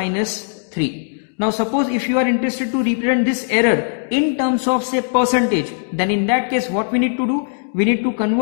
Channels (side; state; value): right; silent; digital silence